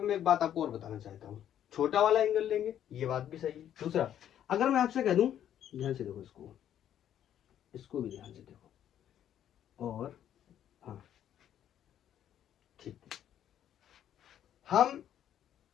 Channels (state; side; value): quieter; right; 10.5 dB